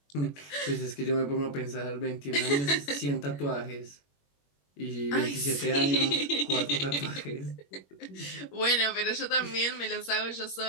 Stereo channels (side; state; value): right; late; 21 ms